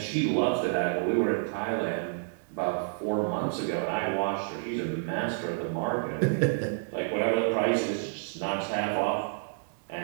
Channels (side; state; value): left; silent; digital silence